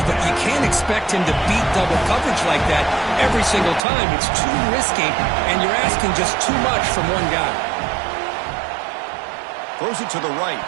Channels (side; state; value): left; drops out; at 3.9 s